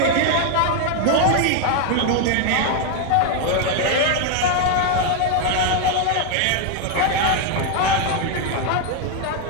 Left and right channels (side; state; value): both; different; correlation 0.01